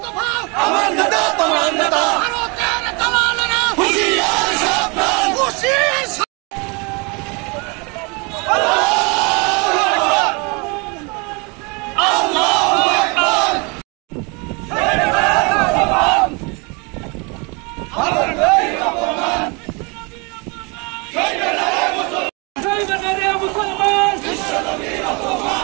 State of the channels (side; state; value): left; quieter; 30.6 dB